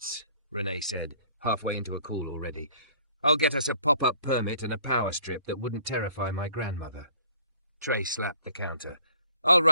Renee said, halfway into a call already. "I'll get us a pop-up permit and a power strip that wouldn't terrify my grandmother." Trey slapped the counter. "I'll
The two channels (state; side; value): inverted; both; correlation -0.56